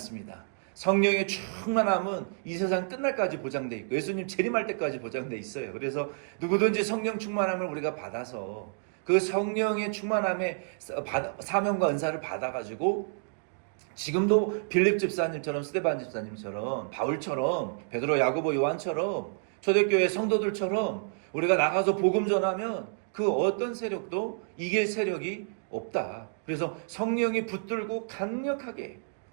성령의 충만함은 이 세상 끝날까지 보장돼 있고 예수님 재림할 때까지 보장돼 있어요. 그래서 누구든지 성령 충만함을 우리가 받아서 그 성령의 충만함의 사명과 은사를 받아가지고 지금도 빌립 집사님처럼 스데반 집사님처럼 바울처럼 베드로 야고보 요한처럼 초대교회 성도들처럼 우리가 나가서 복음 전하면 그 어떤 세력도 이길 세력이 없다. 그래서 성령이 붙들고 강력하게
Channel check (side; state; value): left; silent; digital silence